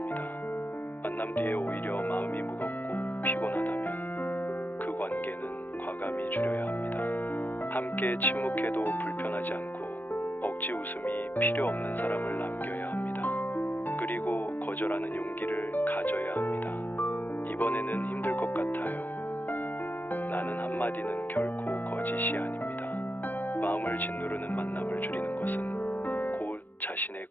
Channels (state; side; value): late; right; 0.089 ms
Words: 만남 뒤에 오히려 마음이 무겁고 피곤하다면 그 관계는 과감히 줄여야 합니다. 함께 침묵해도 불편하지 않고 억지 웃음이 필요 없는 사람을 남겨야 합니다. 그리고 거절하는 용기를 가져야 합니다. 이번에는 힘들 것 같아요. 나는 한마디는 결코 거짓이 아닙니다. 마음을 짓누르는 만남을 줄이는 것은 곧 자신의